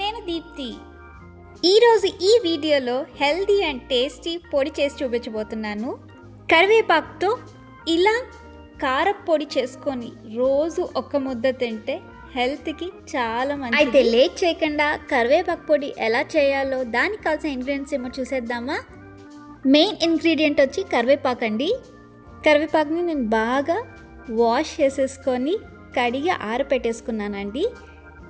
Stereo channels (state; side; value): identical; both; correlation 1.00